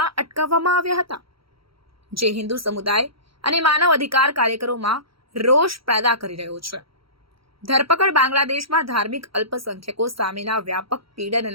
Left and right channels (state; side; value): late; left; 0.75 ms